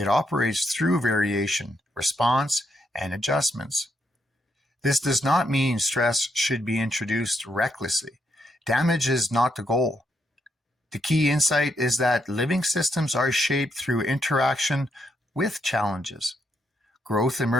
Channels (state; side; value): normal; both; correlation 0.78